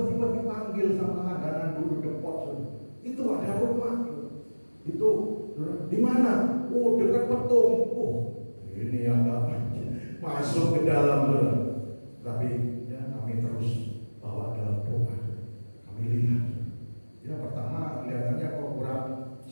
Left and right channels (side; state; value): both; inverted; correlation -1.00